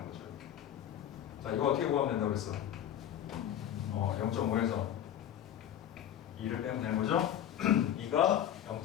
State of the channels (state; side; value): quieter; right; 10.7 dB